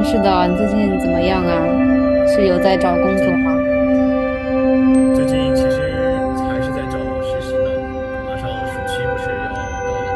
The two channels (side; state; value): both; identical; correlation 1.00